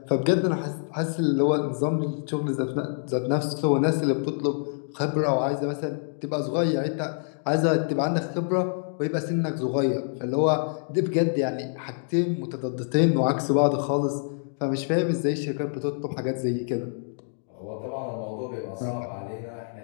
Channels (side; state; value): right; silent; digital silence